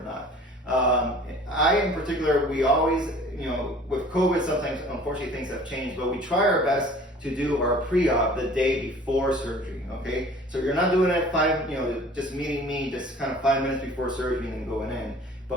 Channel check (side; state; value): both; normal; correlation 0.48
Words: not. I in particular, we always, with COVID, sometimes unfortunately things have changed, but we try our best to do our pre-op the day before surgery. Okay, so you're not doing it just meeting me just kind of 5 minutes before surgery and then going in.